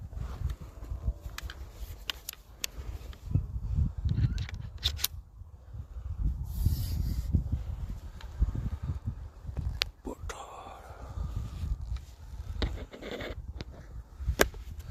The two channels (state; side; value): identical; both; correlation 1.00